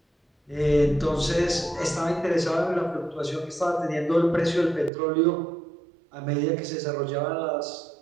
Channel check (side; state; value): left; drops out; at 4.9 s